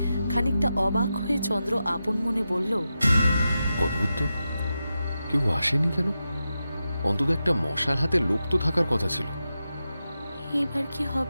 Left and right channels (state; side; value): inverted; both; correlation -0.90